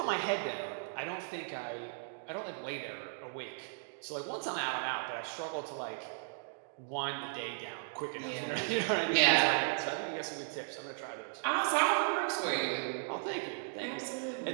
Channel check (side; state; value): left; silent; digital silence